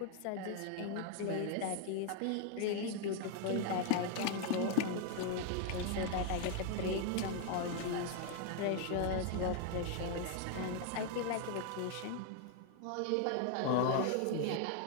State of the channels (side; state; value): both; different; correlation 0.00